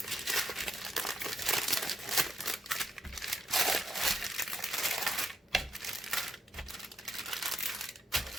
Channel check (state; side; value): normal; both; correlation 0.78